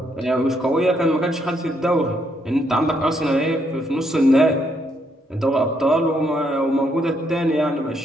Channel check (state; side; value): normal; both; correlation 0.74